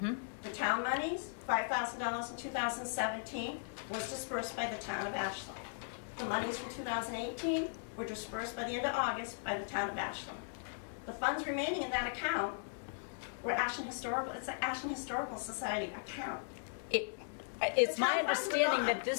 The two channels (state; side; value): silent; right; digital silence